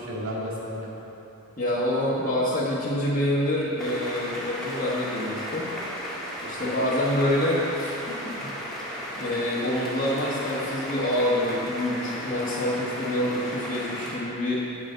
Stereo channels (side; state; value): both; normal; correlation 0.29